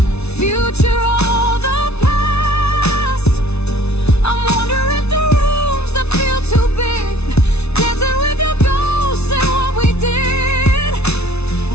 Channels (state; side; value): late; right; 0.81 ms